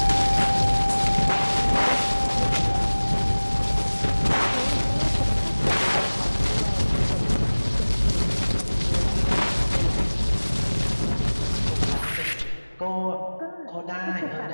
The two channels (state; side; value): inverted; both; correlation -1.00